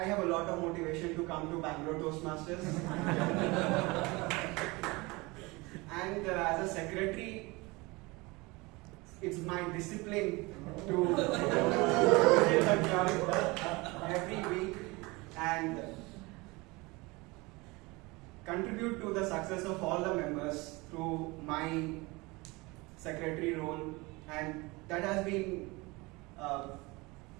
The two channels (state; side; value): quieter; left; 24.2 dB